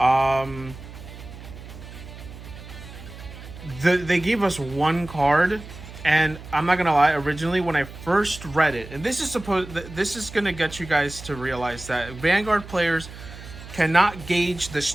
they gave us one card, and I'm not gonna lie. Originally, when I first read it, and this is gonna get you guys to realize that Vanguard players cannot gauge the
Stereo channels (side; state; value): right; noise; hum, 15 dB below the sound